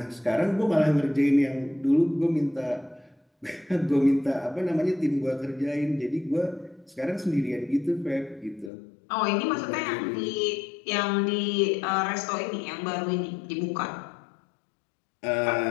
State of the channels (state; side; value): drops out; right; at 8.7 s